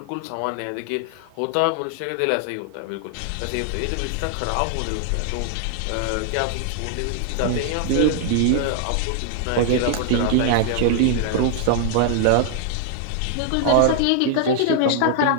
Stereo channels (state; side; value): different; both; correlation 0.00